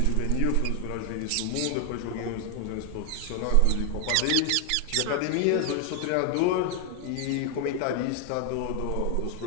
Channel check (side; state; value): both; different; correlation 0.00